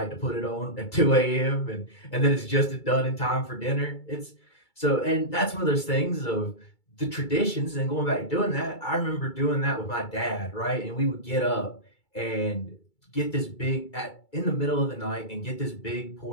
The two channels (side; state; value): right; late; 2.3 ms